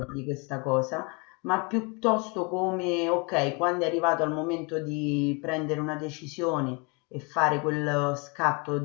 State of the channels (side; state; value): right; quieter; 31.1 dB